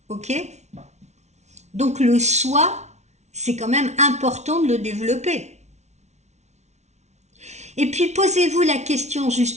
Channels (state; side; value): late; left; 0.32 ms